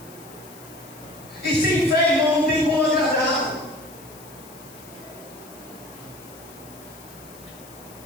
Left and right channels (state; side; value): noise; left; hiss, 20 dB below the sound